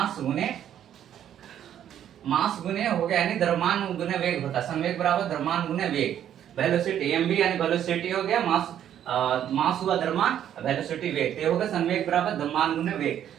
गुणे हो गया, यानी द्रव्यमान गुणे वेग होता है। संवेग बराबर द्रव्यमान गुणे वेग। वेलोसिटी एम यानी वेलोसिटी हो गया, मास हुआ द्रव्यमान, वेलोसिटी वेग, ये होगा संवेग बराबर द्रव्यमान गुणे वेग।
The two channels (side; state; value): left; quieter; 10.3 dB